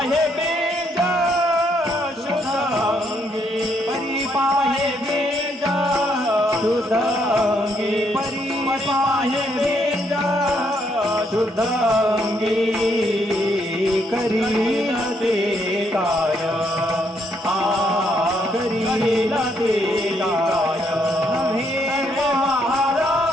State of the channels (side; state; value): both; normal; correlation 0.73